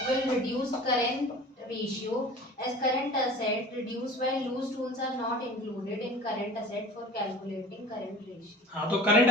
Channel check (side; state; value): both; normal; correlation 0.41